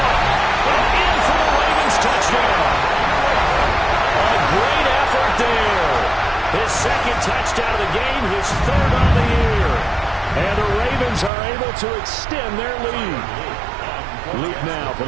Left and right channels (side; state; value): left; drops out; at 11.3 s